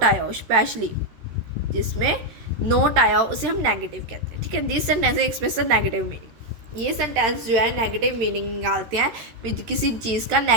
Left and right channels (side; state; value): left; late; 13 ms